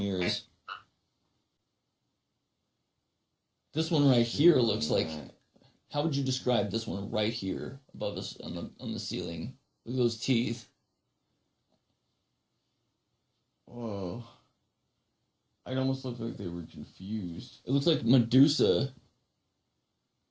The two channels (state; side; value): identical; both; correlation 1.00